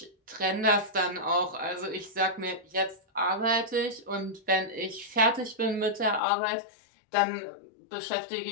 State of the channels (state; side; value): drops out; right; at 6.2 s